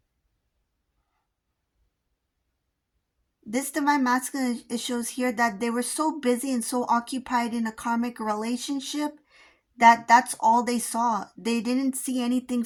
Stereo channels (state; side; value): identical; both; correlation 1.00